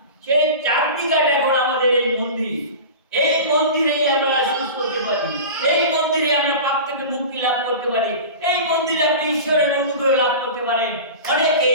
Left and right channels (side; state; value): both; inverted; correlation -0.32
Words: সেই চাঁদনি ঘাট এখন আমাদের এই মন্দির। এই মন্দিরেই আমরা সুস্থ হতে পারি, এই মন্দিরে আমরা পাপ থেকে মুক্তি লাভ করতে পারি, এই মন্দিরে আপনি ঈশ্বরের অনুগ্রহ লাভ করতে পারেন।